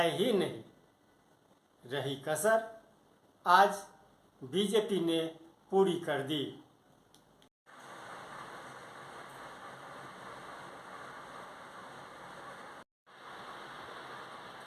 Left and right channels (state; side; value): identical; both; correlation 1.00